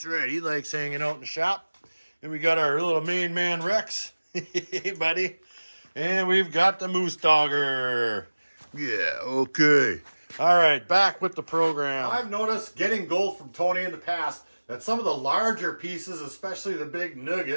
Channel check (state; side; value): inverted; both; correlation -1.00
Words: right, he likes hanging out in the shop. And we got our little main man, Rex. Hey, buddy. And we've got the Moose Dogger. Yeah, okay. All right, back with the program. I've noticed getting gold from Tony in the past that some of the larger pieces, especially the big